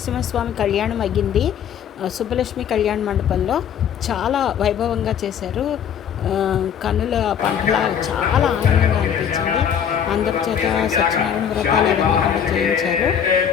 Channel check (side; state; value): right; quieter; 8.4 dB